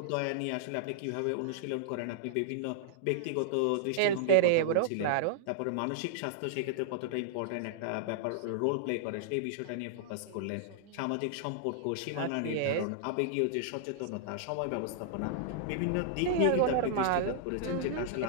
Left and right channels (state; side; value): different; both; correlation -0.01